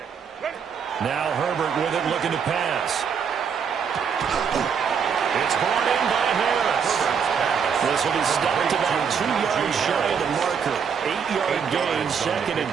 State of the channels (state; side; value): quieter; left; 6.8 dB